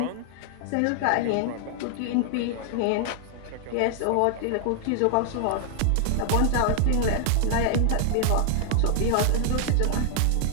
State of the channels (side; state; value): both; different; correlation 0.00